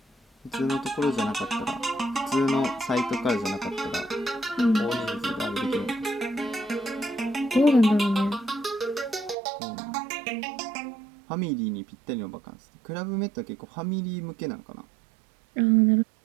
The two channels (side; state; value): left; drops out; at 9.3 s